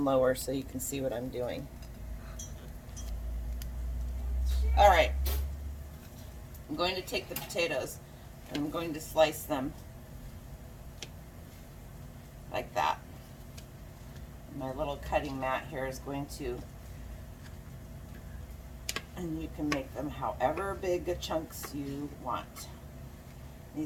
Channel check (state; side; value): identical; both; correlation 1.00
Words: lower so you can see what I'm doing. All right, I'm going to take the potatoes and I'm going to slice them like that. My little cutting mat here is going to, and you can make them however big of chunks you want.